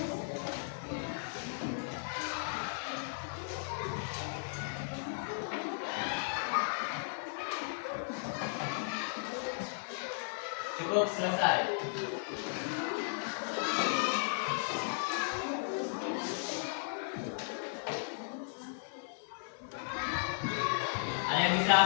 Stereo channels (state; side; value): silent; right; 54 dB below the other